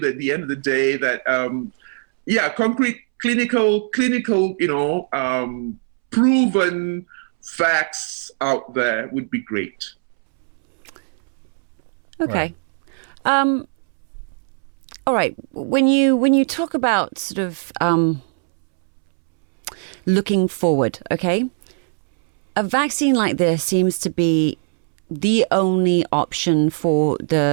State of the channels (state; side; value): silent; left; 65 dB below the other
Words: that at the end of the day that, concrete, clinical, proven facts out there would be great. Okay. All right. When you talk about sort of looking forward, okay, a vaccine like this seems to be the only option for